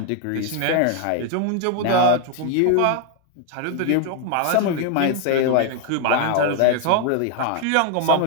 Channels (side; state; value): both; different; correlation 0.00